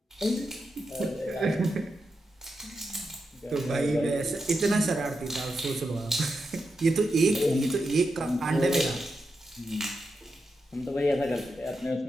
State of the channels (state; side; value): normal; both; correlation 0.87